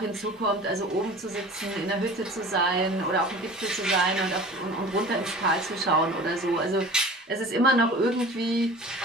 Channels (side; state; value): both; normal; correlation 0.41